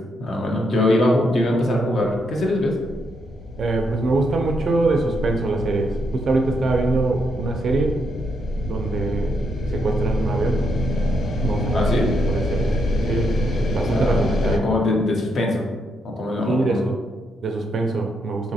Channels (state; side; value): normal; both; correlation 0.78